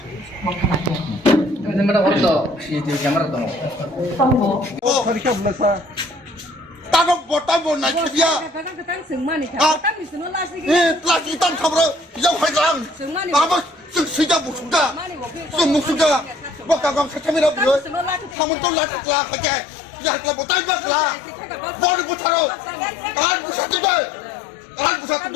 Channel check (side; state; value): right; drops out; at 18.4 s